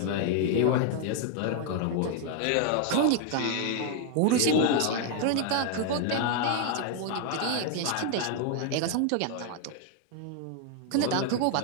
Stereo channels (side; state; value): both; different; correlation 0.00